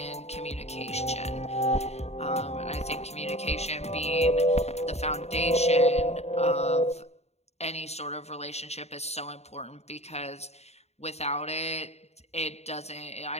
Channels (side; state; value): right; late; 0.31 ms